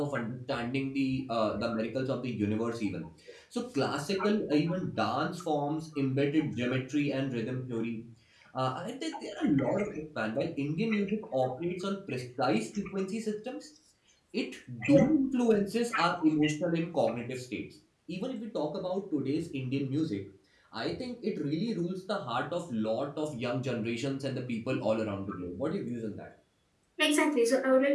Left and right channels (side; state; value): both; identical; correlation 1.00